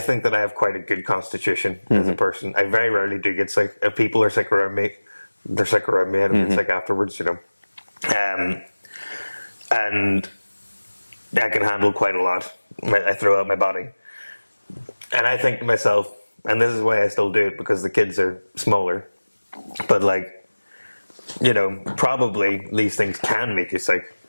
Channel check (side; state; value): both; inverted; correlation -1.00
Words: that I have quite a good constitution as a person. I very rarely do get sick. If people are sick around me, they're sick around me. I don't get sick afterwards, And I can handle quite a lot. I throw out my body. And I think to myself, and this is why I still do it, because the kids are smaller. But like, you know, probably these things can make you sick,